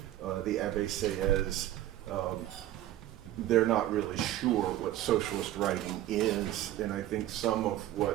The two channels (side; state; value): left; quieter; 13.5 dB